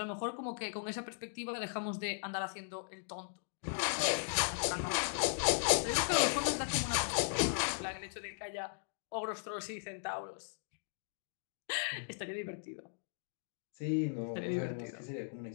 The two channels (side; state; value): right; silent; digital silence